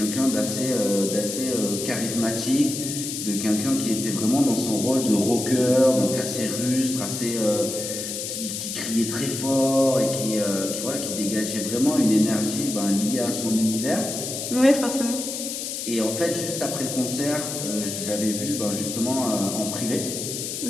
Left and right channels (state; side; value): noise; left; hiss, 5 dB below the sound